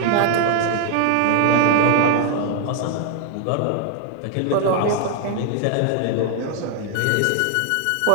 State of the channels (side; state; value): both; different; correlation 0.00